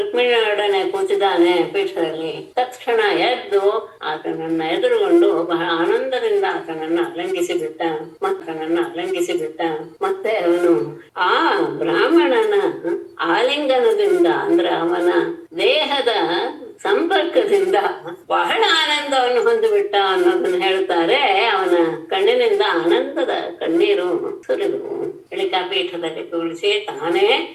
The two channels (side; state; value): both; identical; correlation 1.00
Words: ಕೂತಿದ್ದಾನೆ ಪೀಠದಲ್ಲಿ. ತಕ್ಷಣ ಎದ್ದು ಆತನನ್ನ ಎದುರುಗೊಂಡು ಬಹಳ ಆನಂದದಿಂದ ಆತನನ್ನ ಅಲಂಘಿಸಿ ಬಿಟ್ಟ. ಮತ್ತೆ ಅವನು ಆ ಬ್ರಾಹ್ಮಣನ ಆಲಿಂಗನದಿಂದ ಅಂದ್ರೆ ಅವನ ದೇಹದ ಸಂಪರ್ಕದಿಂದ ಬಹಳ ಆನಂದವನ್ನು ಹೊಂದಿಬಿಟ್ಟ ಅನ್ನೋದನ್ನ ಹೇಳ್ತಾರೆ. ಅವನ ಕಣ್ಣಿನಿಂದ ಆನಂದದ ಕಣ್ಣೀರು ಸುರಿದವು. ಬಳಿಕ ಪೀಠದಲ್ಲಿ ಕೂರಿಸಿ ತಾನೇ